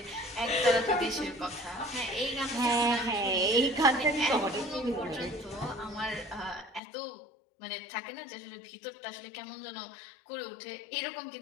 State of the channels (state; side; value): drops out; right; at 6.8 s